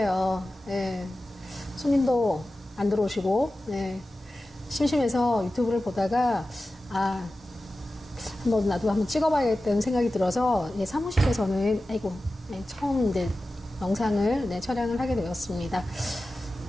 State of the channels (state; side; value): normal; both; correlation 0.95